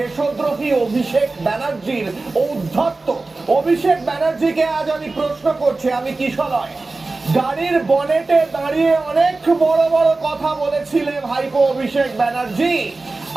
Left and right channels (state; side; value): quieter; left; 3.4 dB